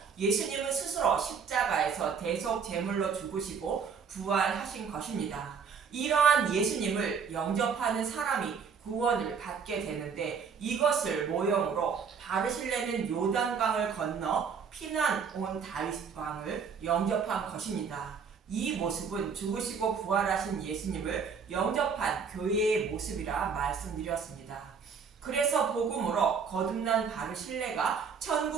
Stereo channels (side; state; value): left; quieter; 6.2 dB